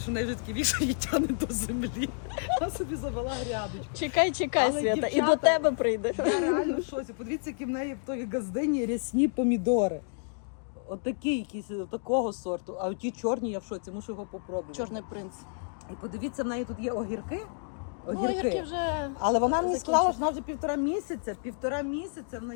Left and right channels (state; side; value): silent; right; digital silence